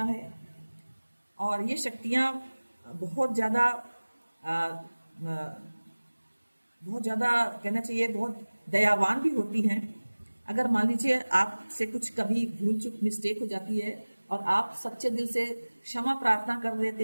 है। और ये शक्तियाँ बहुत ज़्यादा कहना चाहिए, बहुत दयावान भी होती हैं। अगर मान लीजिए आपसे कुछ कभी भूल चूक मिस्टेक हो जाती है और आप सच्चे दिल से क्षमा प्रार्थना कर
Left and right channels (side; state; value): both; inverted; correlation -1.00